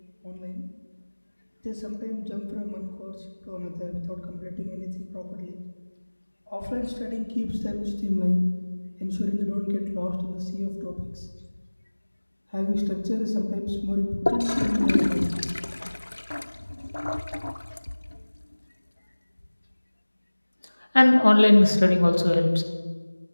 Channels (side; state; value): both; inverted; correlation -1.00